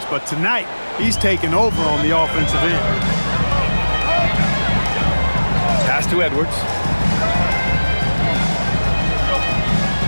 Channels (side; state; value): both; inverted; correlation -1.00